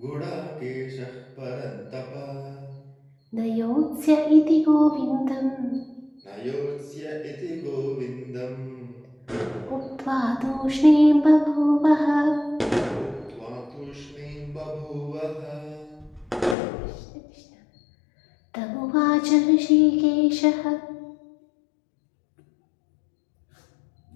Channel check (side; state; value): right; drops out; at 16.6 s